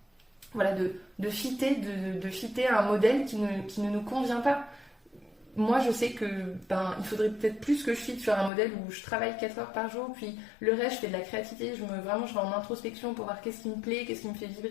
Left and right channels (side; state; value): right; drops out; at 8.5 s